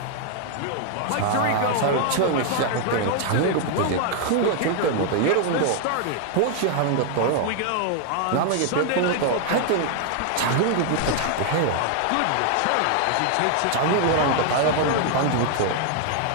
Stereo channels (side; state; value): both; different; correlation 0.00